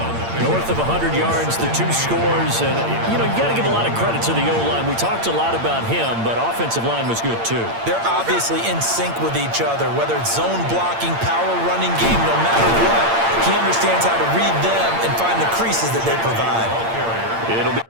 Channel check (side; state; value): left; late; 8.7 ms